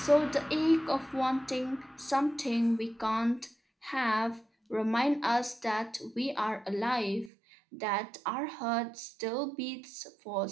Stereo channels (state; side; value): drops out; left; at 7.3 s